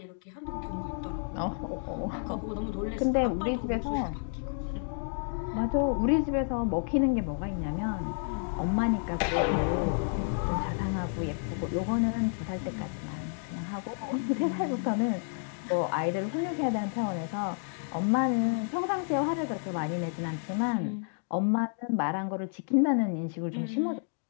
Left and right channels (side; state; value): right; silent; 57 dB below the other